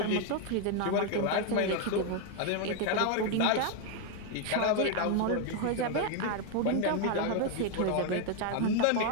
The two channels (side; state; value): both; different; correlation 0.01